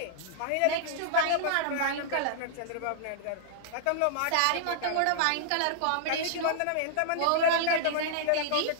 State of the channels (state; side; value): different; both; correlation -0.01